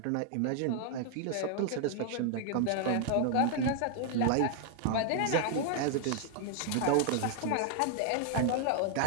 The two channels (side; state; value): both; different; correlation 0.00